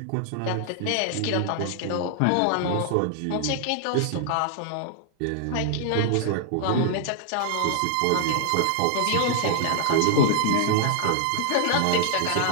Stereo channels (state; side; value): different; both; correlation 0.00